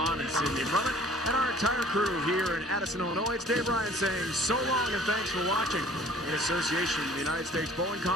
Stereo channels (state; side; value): normal; both; correlation 0.52